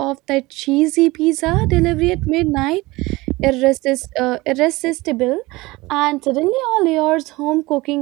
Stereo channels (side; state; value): left; quieter; 21.2 dB